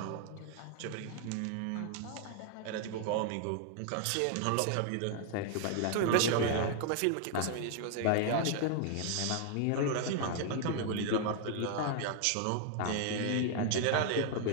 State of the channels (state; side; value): different; both; correlation 0.00